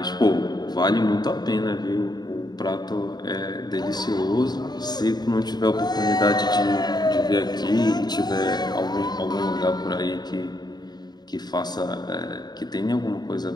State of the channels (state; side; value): late; right; 0.20 ms